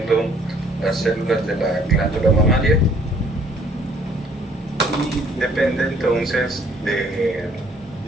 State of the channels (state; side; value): normal; both; correlation 0.60